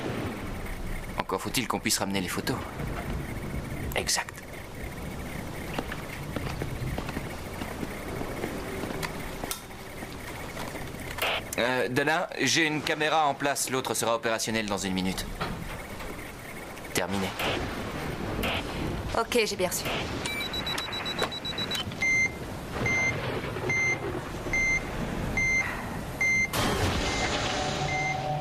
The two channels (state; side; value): identical; both; correlation 1.00